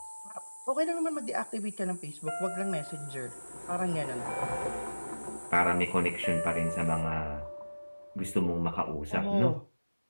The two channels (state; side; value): inverted; both; correlation -1.00